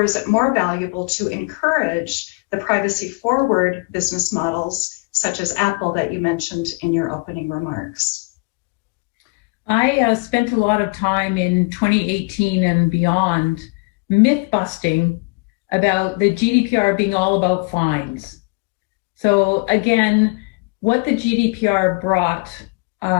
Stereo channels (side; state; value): right; quieter; 30.8 dB